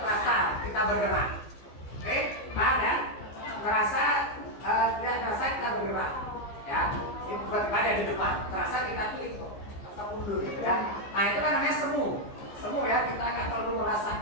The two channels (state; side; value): late; right; 15 ms